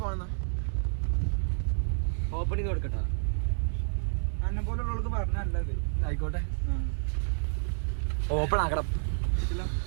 ഓപ്പൺ ചെയ്ത് കൊടുക്കട്ടോ. അന്നെ പോലുള്ളവർക്ക് പറഞ്ഞത് ആയിക്കോട്ടെ. ഓപ്പൺ ആക്കണം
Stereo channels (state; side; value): silent; left; digital silence